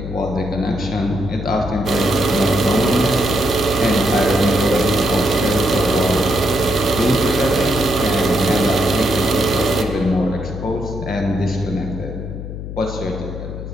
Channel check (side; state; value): left; noise; hum, 8 dB below the sound